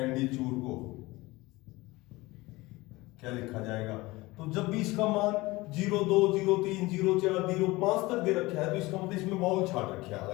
को क्या लिखा जाएगा। तो जब भी इसका मान 02 03 04 05 तक दे रखा है तो इसका मतलब इसमें वाउल छाट रखे हैं,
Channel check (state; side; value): quieter; right; 21.1 dB